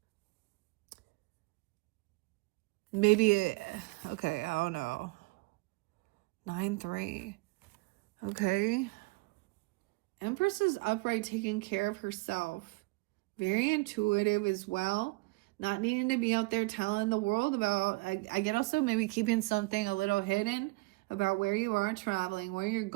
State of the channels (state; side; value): quieter; left; 24.9 dB